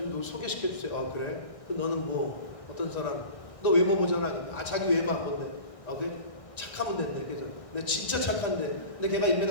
소개시켜 주세요. 아, 그래? 그 너는 뭐 어떤 사람? 너 외모 보잖아. 아, 자기 외모 안 본대. 아, 그래? 착하면 된대. 그죠? 내가 진짜 착한데. 근데 걔가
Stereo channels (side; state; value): right; late; 1.6 ms